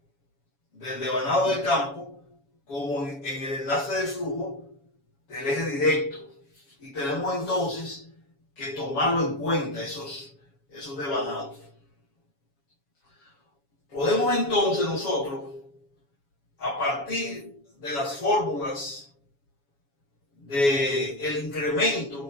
del devanado de campo como en el enlace de flujo del eje directo. Y tenemos entonces que tomarlo en cuenta esos devanados. Podemos entonces nosotros, a partir de las fórmulas del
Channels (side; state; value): right; late; 7.2 ms